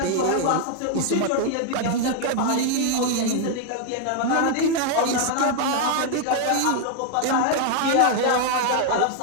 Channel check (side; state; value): both; different; correlation 0.00